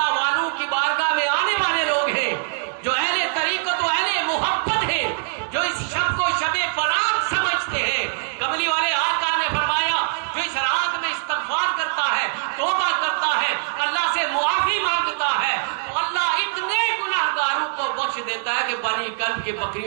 والوں کی بارگاہ میں آنے والے لوگ ہیں جو اہل طریقت و اہل محبت ہیں جو اس شب کو شب برات سمجھتے ہیں. کملی والے آقا نے فرمایا جو اس رات میں استغفار کرتا ہے توبہ کرتا ہے اللہ سے معافی مانگتا ہے تو اللہ اتنے گناہگاروں کو بخش دیتا ہے کہ بنی کلب کے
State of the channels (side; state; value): left; silent; digital silence